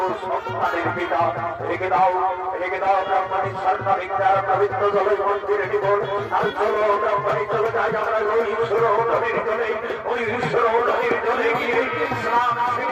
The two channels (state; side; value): identical; both; correlation 1.00